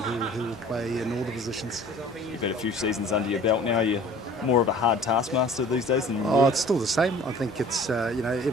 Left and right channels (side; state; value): both; normal; correlation 0.48